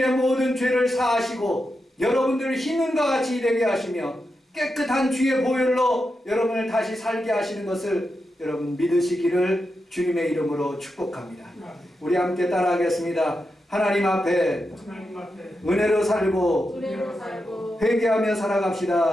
모든 죄를 사하시고 여러분들을 흰눈과 같이 되게 하시며 깨끗한 주의 보혈로 여러분을 다시 살게 하시는 것을 여러분 믿으시기를 주님의 이름으로 축복합니다. 우리 함께 따라하겠습니다. 하나님 앞에 은혜로 살고 회개하며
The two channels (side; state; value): both; normal; correlation 0.88